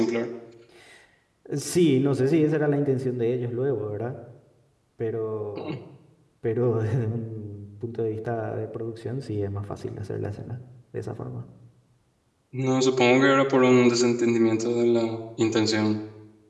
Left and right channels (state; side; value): identical; both; correlation 1.00